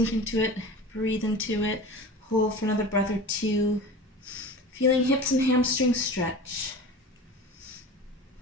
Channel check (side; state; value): both; normal; correlation 0.35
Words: into it, breathe into it, hold for another breath or two. Feeling hips and hamstrings stretch.